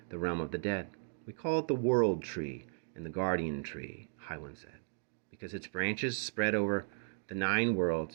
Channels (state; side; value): silent; left; digital silence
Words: the realm of the dead. We call it the world tree and the guardian tree, High One said, because its branches spread over the 9